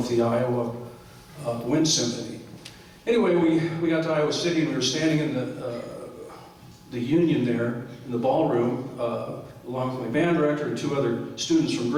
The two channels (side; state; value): both; identical; correlation 1.00